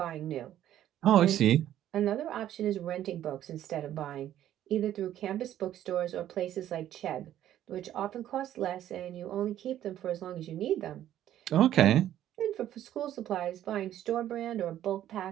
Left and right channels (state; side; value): quieter; left; 12.0 dB